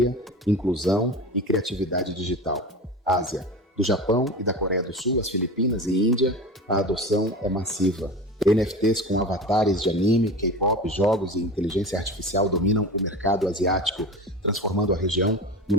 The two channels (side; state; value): both; normal; correlation 0.31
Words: inclusão e criatividade digital. Ásia. Do Japão e da Coreia do Sul às Filipinas e Índia, a adoção é massiva. NFTs com avatares de anime, K-pop, jogos e inteligência artificial dominam o mercado asiático, transformando a região em um